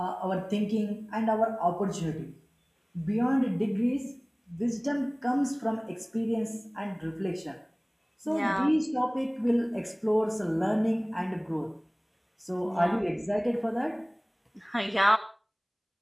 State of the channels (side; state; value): both; identical; correlation 1.00